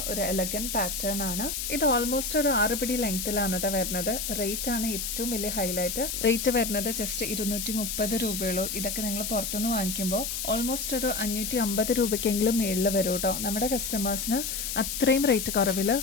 ഒരു എലഗന്റ് പാറ്റേൺ ആണ്. ഇത് ഓൾമോസ്റ്റ് ഒരു 6 പിടി ലെങ്ത്തിലാണ് കേട്ടോ വരുന്നത്. റേറ്റ് ആണ് ഏറ്റവും വലിയ ഹൈലൈറ്റ്. റേറ്റ് വരുന്നത് ജസ്റ്റ് 230 രൂപയുള്ളൂ. ഇതൊക്കെ നിങ്ങൾ പുറത്തുനിന്ന് വാങ്ങിക്കുമ്പോൾ ഓൾമോസ്റ്റ് ഒരു 550 രൂപയ്ക്കെങ്കിലും മേളിൽ വരും കേട്ടോ. നമ്മുടെ കസ്റ്റമേഴ്സിന് അത്രയും റേറ്റ് കുറവിൽ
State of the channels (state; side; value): noise; left; hiss, 3 dB below the sound